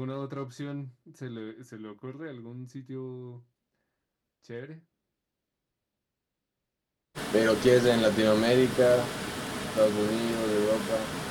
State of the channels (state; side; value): identical; both; correlation 1.00